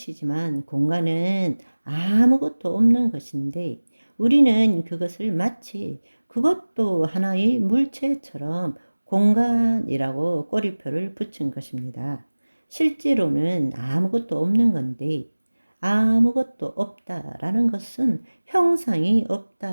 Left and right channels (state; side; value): inverted; both; correlation -1.00